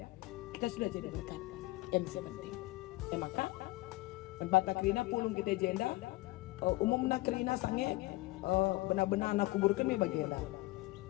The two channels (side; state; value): right; quieter; 20.4 dB